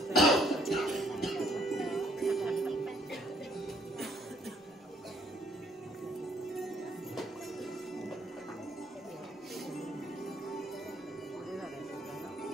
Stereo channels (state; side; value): normal; both; correlation 0.65